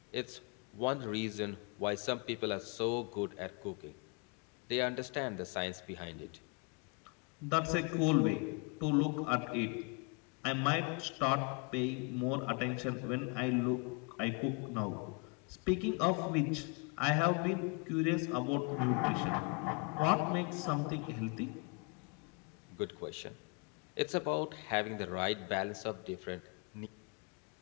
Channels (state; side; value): quieter; right; 33.4 dB